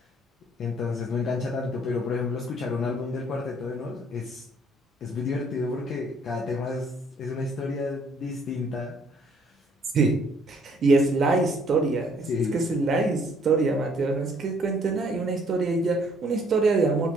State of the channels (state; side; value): normal; both; correlation 0.63